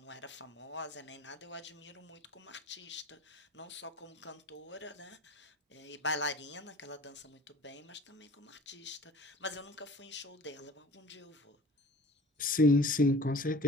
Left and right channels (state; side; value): normal; both; correlation 0.45